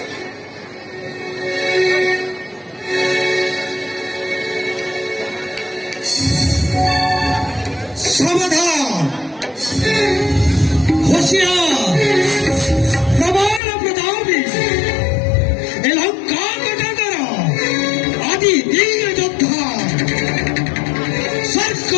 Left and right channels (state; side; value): drops out; right; at 13.6 s